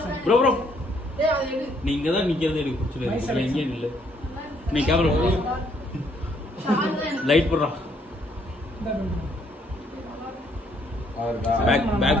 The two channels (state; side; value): normal; both; correlation 0.68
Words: ப்ரோ ப்ரோ டேய் அது எடு. நீங்க தான் நிக்கிறது எனக்கு பிடிச்சல. நீங்க இல்ல. நீ கேமரா புறா. லைட் புறா. அவர்தா